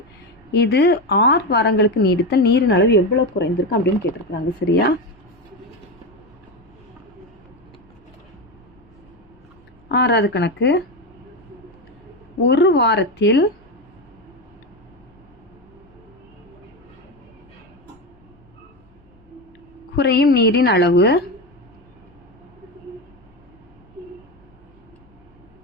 இது 6 வாரங்களுக்கு நீடித்தால் நீரின் அளவு எவ்வளோ குறைந்திருக்கும் அப்படின்னு கேட்டிருக்கிறாங்க. சரியா? 6வது கணக்கு. ஒரு வாரத்தில் குறையும் நீரின் அளவு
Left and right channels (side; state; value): left; noise; rumble, 30 dB below the sound